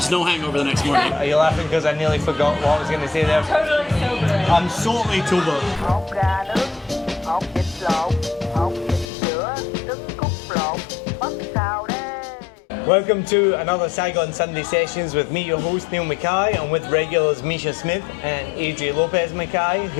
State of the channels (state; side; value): drops out; right; at 9.1 s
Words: no hangover the next morning. Are you laughing because I nearly forgot what I was gonna say there? Totally sober. I'm totally sober. Hột gà nướng, hột vịt lộn, hột vịt sữa, trứng cút lộn, bắp xào đây. Welcome to another Saigon Sunday Sessions with me, your host Neil Mackay, and with regulars Misha Smith and Adria Lopez Mackay,